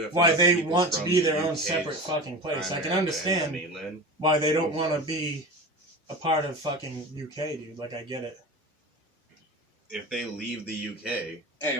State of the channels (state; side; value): normal; both; correlation 0.30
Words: why enough they people want to from be the their own UK's separate fucking place. I can primary understand mainland. why they don't want to be a part of fucking UK, dude. Like I get it. If they leave the UK, Hey,